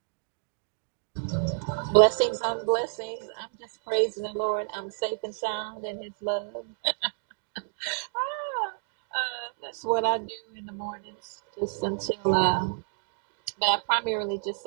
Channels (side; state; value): left; silent; digital silence